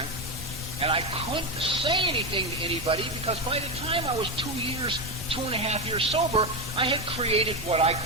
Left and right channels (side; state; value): both; normal; correlation 0.13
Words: And I couldn't say anything to anybody because by the time I was 2.5 years sober, I had created what I